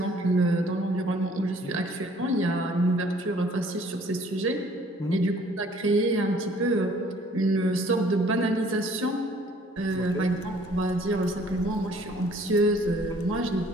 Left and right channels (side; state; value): both; normal; correlation 0.57